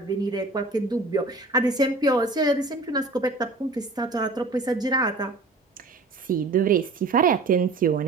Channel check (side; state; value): left; quieter; 3.4 dB